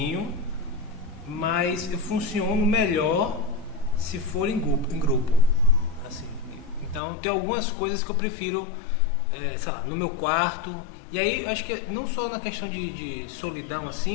mas eu funciono melhor se for em grupo, assim. Então tem algumas coisas que eu prefiro, sei lá, no meu quarto. E aí eu acho que não só na questão de solidão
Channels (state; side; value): drops out; right; at 7.0 s